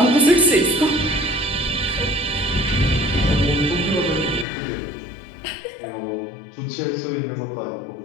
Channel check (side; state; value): right; drops out; at 4.5 s